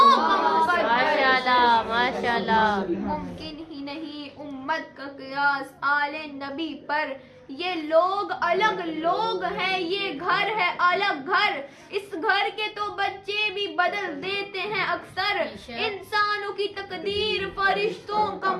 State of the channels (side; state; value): both; identical; correlation 1.00